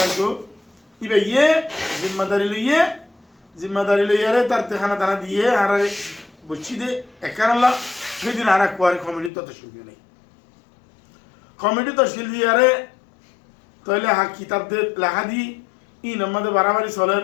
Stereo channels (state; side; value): drops out; right; at 9.3 s